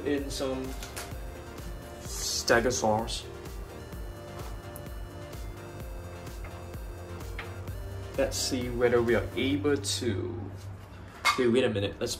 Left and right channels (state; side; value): identical; both; correlation 1.00